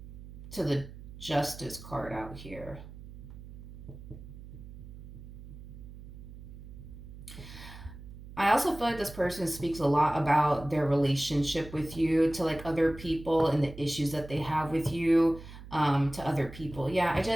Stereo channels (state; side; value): noise; right; hum, 15 dB below the sound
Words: to the Justice card out here. I also feel like this person speaks a lot about their relationship with you to, like, other people, and the issues that they have with you, to other people. Yeah, I